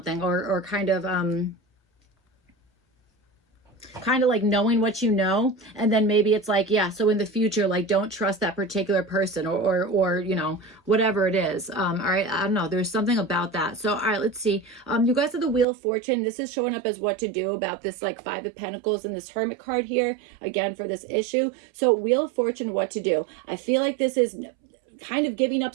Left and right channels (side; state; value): left; drops out; at 15.7 s